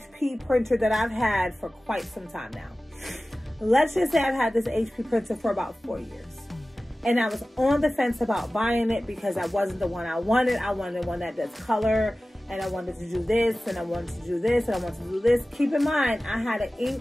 printer that I've had for quite some time now. Let's just say I've had this HP printer for about 4 years. And I was on the fence about buying it because that wasn't the one I wanted. I wanted one that does color, and I wanted to do this, and I wanted to do this, and I wanted to do this. Keep in mind, I had an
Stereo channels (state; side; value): normal; both; correlation 0.96